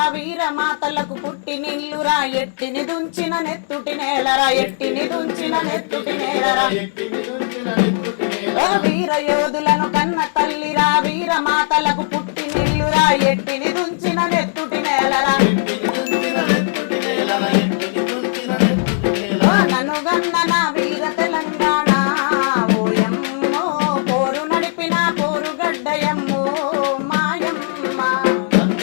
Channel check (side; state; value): right; silent; 67 dB below the other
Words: వీర మాతలకు పుట్టి నిల్లురా ఎట్టిని దుంచిన నెత్తుటి నేలరా ఎట్టిని దుంచిన నెత్తుటి నేలరా వీర యోధులను కన్న తల్లిరా వీర మాతలకు పుట్టి నిల్లురా ఎట్టిని దుంచిన నెత్తుటి నేలరా నన్ను గన్న నా వీర తెలంగాణ ఓయమ్మో పోరు నడిపిన పోరుగడ్డయమ్మో మాయమ్మ